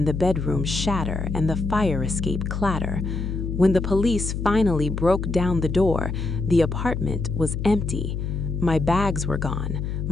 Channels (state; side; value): noise; left; hum, 3 dB below the sound